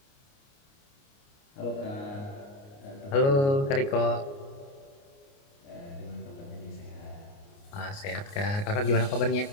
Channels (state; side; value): late; right; 29 ms